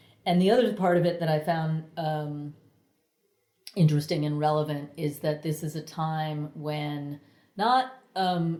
And the other part of it that I found interesting and relevant is that this is a time when not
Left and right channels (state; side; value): identical; both; correlation 1.00